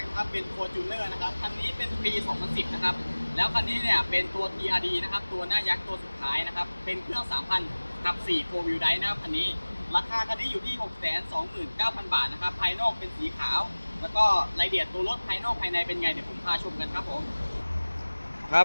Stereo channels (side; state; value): both; inverted; correlation -1.00